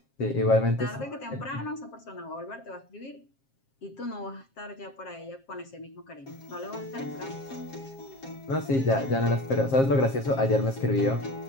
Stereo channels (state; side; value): late; right; 7.4 ms